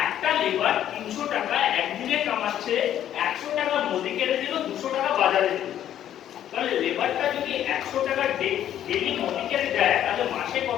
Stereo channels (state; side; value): quieter; right; 11.0 dB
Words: একটা লেবার 300 টাকা একদিনে কামাচ্ছে 100 টাকা মোদি কেয়ারে দিল 200 টাকা বাজারে দিল লেবারটা যদি 100 টাকা ডেলি মনিকে দেয় তাহলে মাসে